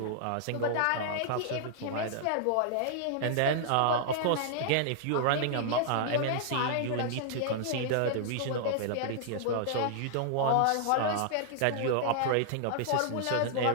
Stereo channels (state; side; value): different; both; correlation -0.01